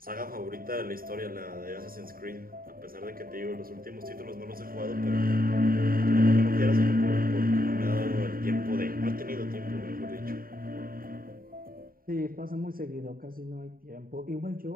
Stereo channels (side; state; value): left; late; 0.42 ms